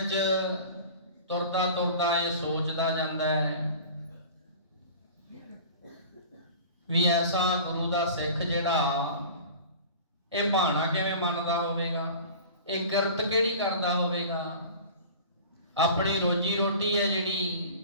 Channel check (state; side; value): inverted; both; correlation -0.39